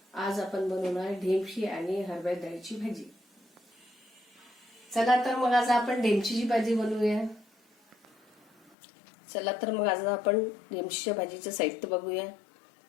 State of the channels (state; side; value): drops out; right; at 8.8 s